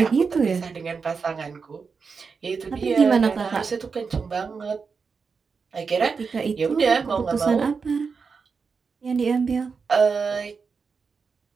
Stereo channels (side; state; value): left; quieter; 5.3 dB